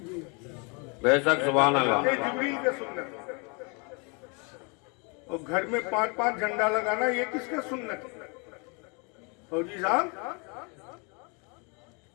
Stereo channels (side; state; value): right; quieter; 33.0 dB